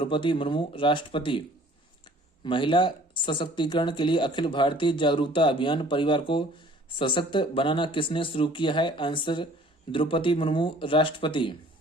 मुर्मू, राष्ट्रपति। महिला सशक्तिकरण के लिए अखिल भारतीय जागरूकता अभियान परिवार को सशक्त बनाना किसने शुरू किया है? आंसर द्रौपदी मुर्मू, राष्ट्रपति।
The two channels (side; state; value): both; normal; correlation 0.53